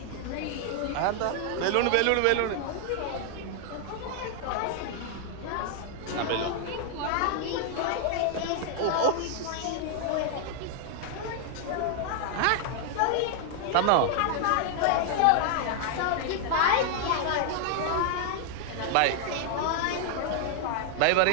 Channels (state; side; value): different; both; correlation 0.00